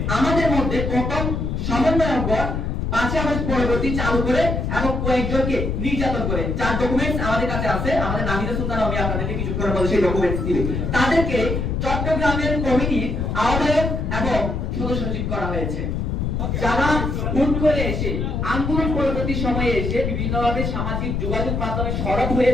আমাদের মধ্যে প্রথম সমন্বয়কগণ 5 আগস্ট পরবর্তী চালু করে এবং কয়েকজনকে নির্যাতন করে, যার ডকুমেন্টস আমাদের কাছে আছে। আমাদের নাহিদা সুলতান আমি আপনাদেরকে কিছুক্ষণের মধ্যে সেই ডকুমেন্টস দিবে। তাদেরকে চট্টগ্রামের কমিটির আহ্বায়ক এবং সদস্য সচিব করা হয়েছে। যারা হুট করে এসে আন্দোলন পরবর্তী সময়ে এসে বিভিন্নভাবে সামাজিক যোগাযোগ মাধ্যমে সরব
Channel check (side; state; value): left; noise; rumble, 1 dB below the sound